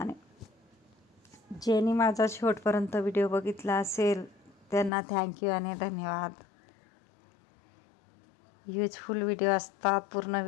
ज्यांनी माझा शेवटपर्यंत व्हिडिओ बघितला असेल त्यांना थँक्यू आणि धन्यवाद. युजफुल व्हिडिओ असतात, पूर्ण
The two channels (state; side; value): drops out; right; at 4.9 s